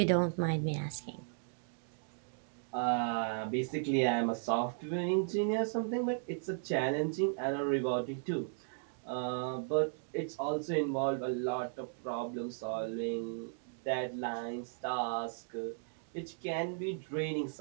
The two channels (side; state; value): left; silent; digital silence